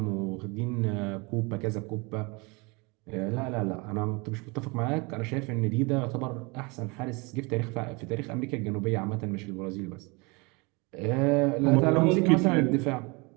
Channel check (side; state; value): left; quieter; 28.1 dB